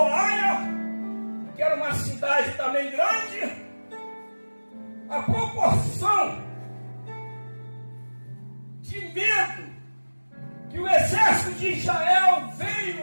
Aia, que era uma cidade também grande, a proporção de medo que o exército de Israel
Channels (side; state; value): both; inverted; correlation -1.00